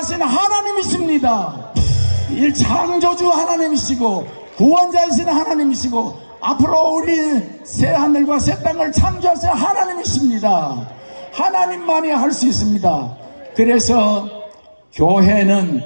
하나님이십니다. 이 창조주 하나님이시고 구원자이신 하나님이시고 앞으로 우리 새 하늘과 새 땅을 창조하신 하나님이십니다. 하나님만이 할 수 있습니다. 그래서 교회는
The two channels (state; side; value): inverted; both; correlation -1.00